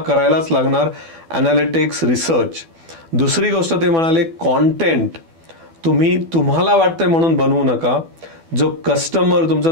लागणार, ॲनालिटिक्स, रिसर्च. दुसरी गोष्ट ते म्हणाले, कॉन्टेंट तुम्ही तुम्हाला वाटतंय म्हणून बनवू नका. जो कस्टमर, तुमचा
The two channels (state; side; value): late; left; 12 ms